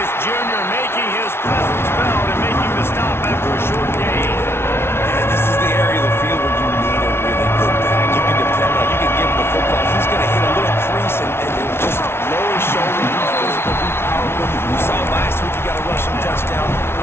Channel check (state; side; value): late; right; 0.12 ms